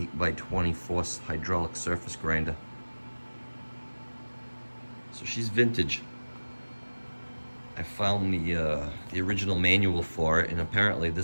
force hydraulic surface grinder. So she's vintage. I found the original manual for it, and apparently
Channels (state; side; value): inverted; both; correlation -1.00